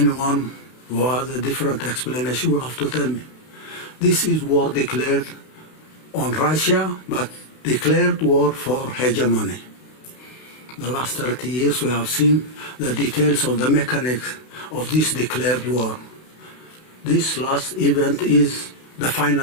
who has a different explanation will have to tell me. This is war declared on Russia, but declared war for hegemony. The last 30 years we have seen the details of the mechanics of this declared war. This last event is the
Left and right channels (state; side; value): late; right; 32 ms